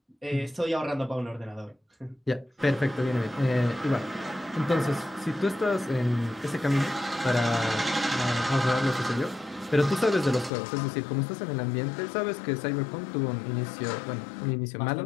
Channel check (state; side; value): drops out; right; at 10.5 s